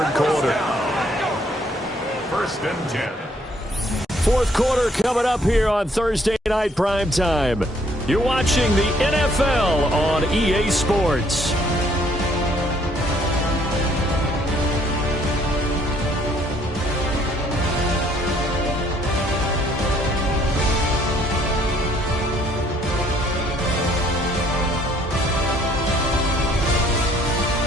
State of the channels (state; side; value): normal; both; correlation 0.64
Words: quarter. First and 10. 4th quarter coming up here on Thursday Night Primetime. You're watching the NFL on EA Sports.